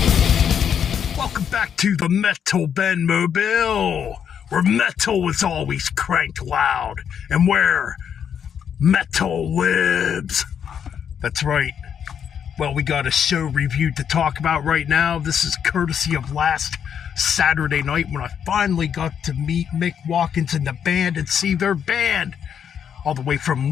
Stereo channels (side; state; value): right; quieter; 8.1 dB